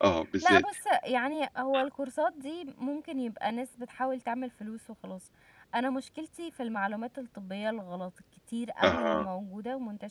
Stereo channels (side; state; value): both; identical; correlation 1.00